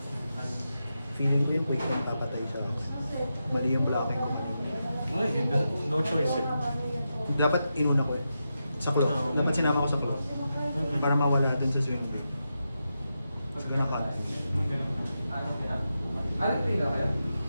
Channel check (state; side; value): inverted; both; correlation -0.88